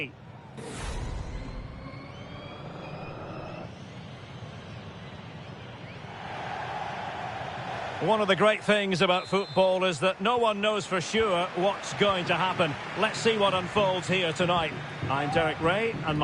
One of the great things about football is that no one knows for sure what's going to happen. Let's see what unfolds here tonight. I'm Derek Ray, and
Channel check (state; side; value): identical; both; correlation 1.00